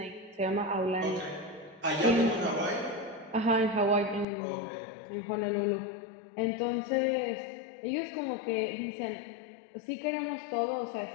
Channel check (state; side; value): drops out; right; at 4.2 s